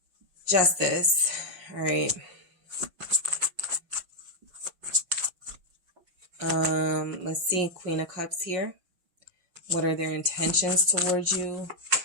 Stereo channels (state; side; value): late; left; 5.5 ms